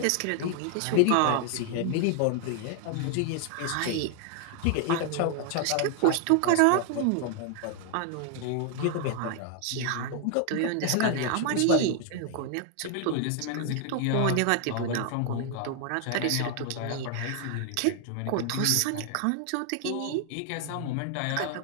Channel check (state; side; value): different; both; correlation 0.00